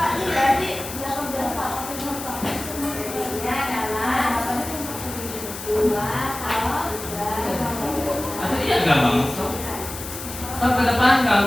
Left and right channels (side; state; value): left; noise; hiss, 10 dB below the sound